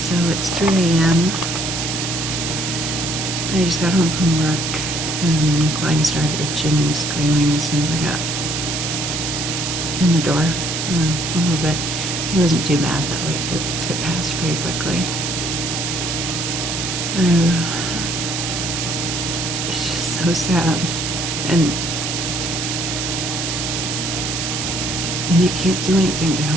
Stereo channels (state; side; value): noise; right; hiss, 2 dB below the sound